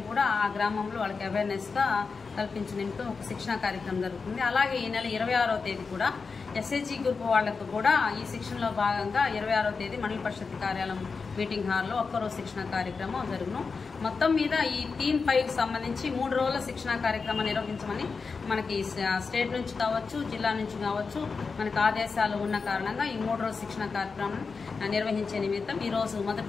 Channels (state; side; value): quieter; right; 4.8 dB